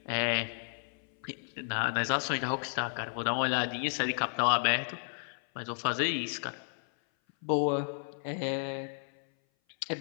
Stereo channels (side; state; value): right; silent; 56 dB below the other